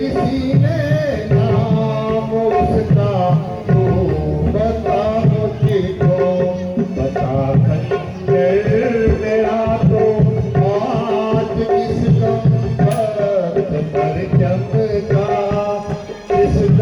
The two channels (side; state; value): both; identical; correlation 1.00